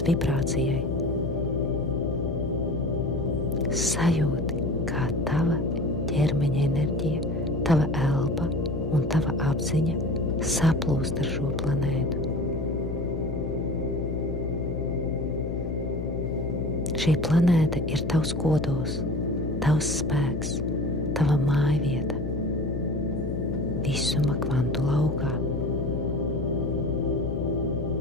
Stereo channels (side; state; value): left; noise; hum, 4 dB below the sound